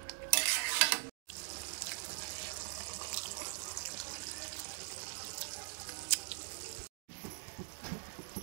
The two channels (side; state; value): left; silent; digital silence